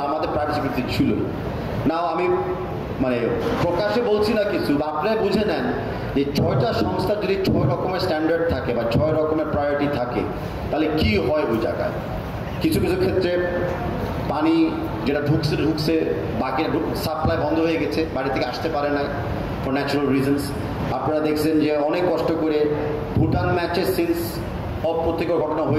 আমাদের প্রাইভেট সিকিউরিটি ছিল। নাও আমি মানে প্রকাশ্যে বলছি না কিছু, আপনারা বুঝে নেন যে 6টা সংস্থার যদি 6 রকমের স্ট্যান্ডার্ড থাকে বা 6 রকমের প্রায়োরিটি থাকে, তাহলে কি হয় ওই জায়গায়। কিছু কিছু ক্ষেত্রে পানি যেটা ঢুকছে বাকি সাপ্লাই বন্ধ হয়ে গেছে, বাড়ি থেকে আসতে পারে নাই ফর ন্যাচারাল রিজনস। আপনারা দেখছেন যে অনেক কষ্ট করে ভুটান ম্যাচের সিন্স অপ্রত্যেকের ঘটনা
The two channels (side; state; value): both; identical; correlation 1.00